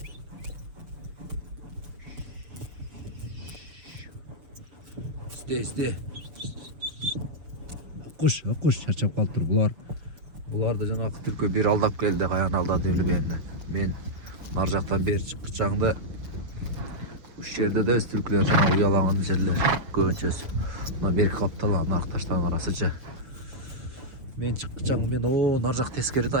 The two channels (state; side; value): late; left; 6.6 ms